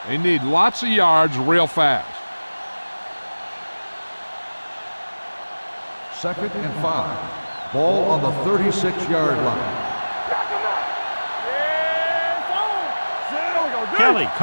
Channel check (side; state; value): both; inverted; correlation -1.00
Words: They need lots of yards real fast. Second and 5. Ball on the 36-yard line. Kelly